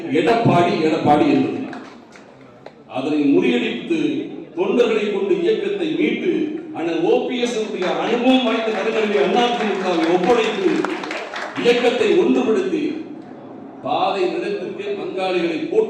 எடப்பாடி எடப்பாடி என்பது. அதனை முறியடித்து தொண்டர்களை கொண்டு இயக்கத்தை மீட்டு அண்ணன் ஓபிஎஸ் அனுபவம் வாய்ந்த கருங்களை அதிமுகவை ஒப்படைத்து இயக்கத்தை ஒன்றுபடுத்தி பாதை நிலத்திற்கே பங்காளிகளை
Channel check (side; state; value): both; identical; correlation 1.00